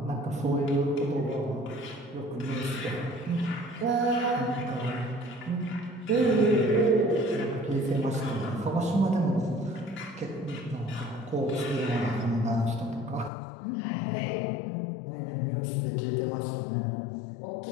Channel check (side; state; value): right; drops out; at 13.3 s